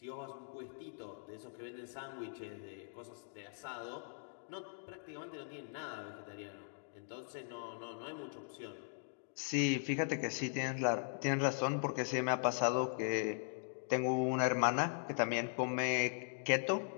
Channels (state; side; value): silent; right; digital silence